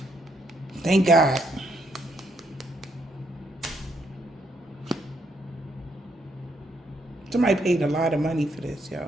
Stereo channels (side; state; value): both; normal; correlation 0.74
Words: Thank God. Somebody paid a lot of money for this,